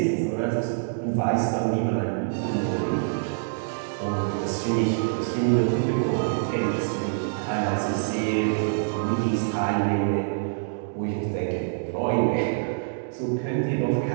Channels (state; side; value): silent; left; digital silence